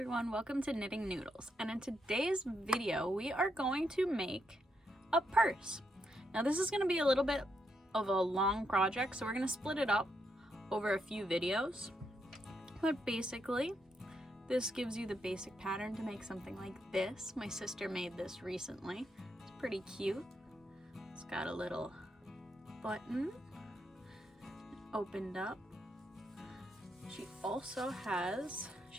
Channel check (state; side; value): normal; both; correlation 0.80